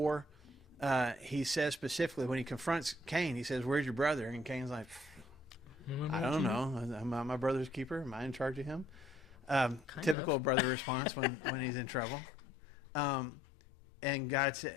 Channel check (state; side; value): drops out; right; at 10.2 s